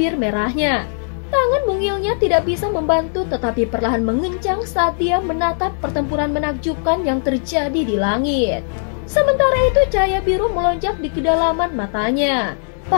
merahnya. Tangan mungilnya tidak bisa membantu tetapi perlahan mengencang saat dia menatap pertempuran menakjubkan yang terjadi di langit. Sementara itu cahaya biru melonjak di kedalaman matanya.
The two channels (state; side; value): silent; right; digital silence